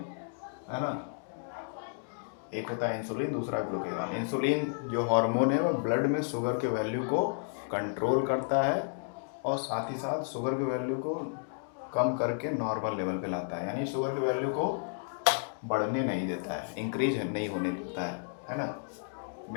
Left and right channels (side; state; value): right; silent; digital silence